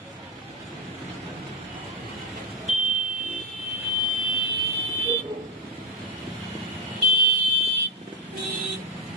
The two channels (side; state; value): both; normal; correlation 0.06